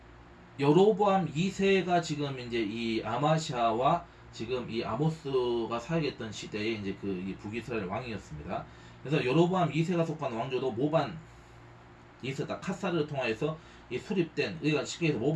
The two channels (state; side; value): identical; both; correlation 1.00